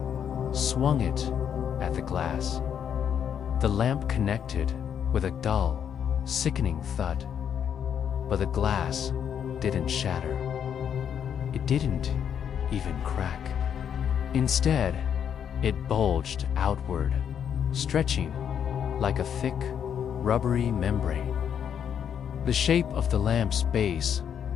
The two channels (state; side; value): quieter; right; 8.4 dB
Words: swung it at the glass. The lamp connected with a dull, sickening thud, but the glass didn't shatter. It didn't even crack. Instead, it bulged outward, stretching like a thick, rubbery membrane. The shape of the lamp's base